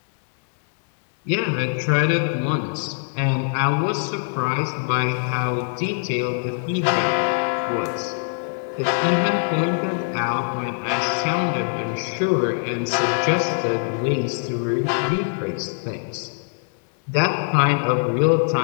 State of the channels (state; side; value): silent; right; 64 dB below the other